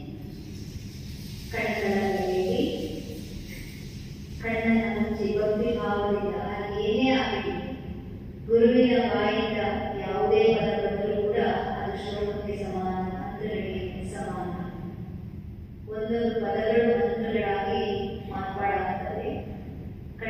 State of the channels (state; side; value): identical; both; correlation 1.00